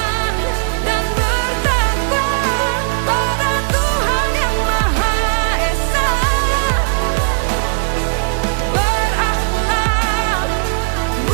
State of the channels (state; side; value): silent; left; digital silence